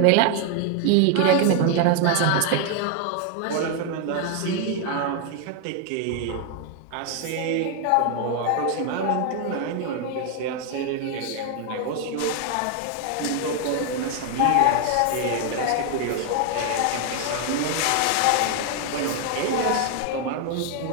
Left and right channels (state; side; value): different; both; correlation 0.01